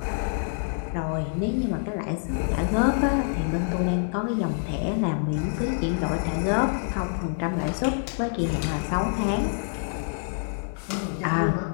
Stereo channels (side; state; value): right; silent; digital silence